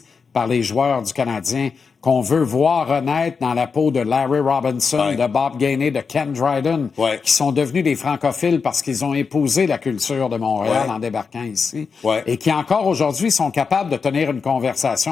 par les joueurs du Canadien qu'on veut voir renaître dans la peau de Larry Robinson, de Bob Gainey, de Ken Dryden, qui sont devenus des francophiles parce qu'ils ont épousé la culture de Montréal en débarquant ici, et qui encore aujourd'hui sont capables de tenir une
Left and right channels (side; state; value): right; quieter; 5.4 dB